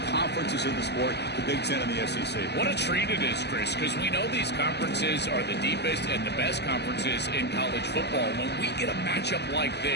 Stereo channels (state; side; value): late; right; 0.49 ms